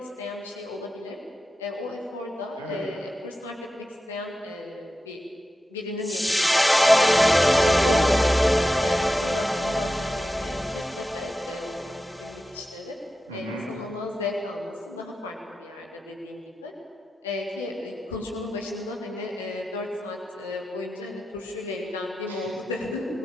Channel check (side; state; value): both; normal; correlation 0.92